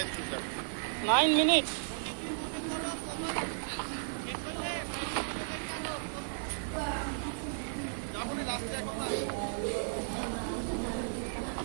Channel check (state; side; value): silent; left; 55 dB below the other